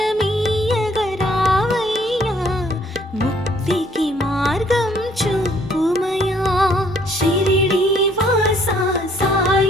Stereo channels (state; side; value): normal; both; correlation 0.63